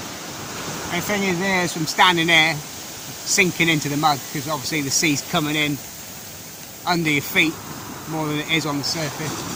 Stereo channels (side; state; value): both; identical; correlation 1.00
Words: And the thing is, there's from standing there, sinking into the mud, because obviously the sea's coming in under your feet more than it is on the surface.